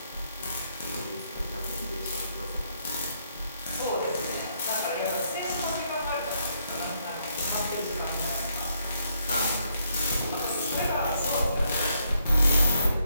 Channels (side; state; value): both; inverted; correlation -0.73